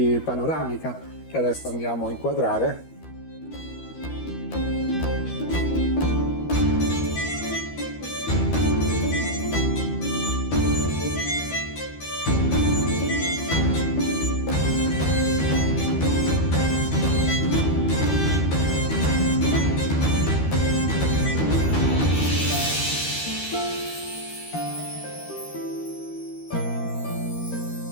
panoramica che adesso andiamo a inquadrare.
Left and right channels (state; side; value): late; right; 13 ms